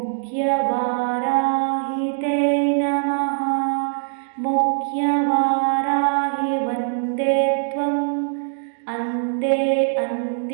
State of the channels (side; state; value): left; silent; digital silence